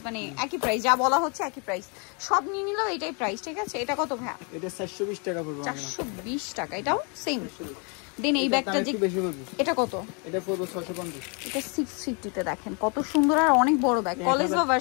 মানে একই প্রাইস, যা বলা হচ্ছে একই প্রাইস। সব নিয়ে নিলেও এটাই প্রাইস, ঠিক আছে। এটা কত ভাই? এটা 420 টাকা পড়বে। 420 টাকা। এটাও সেম। দেন এই ব্যাগটা যে, এটা কত? এটা পড়বে 650। এটা 650 তে। দেখেন কত সুন্দর আর অনেক বড় ব্যাগ, কলেজ বা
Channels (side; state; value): right; quieter; 34.9 dB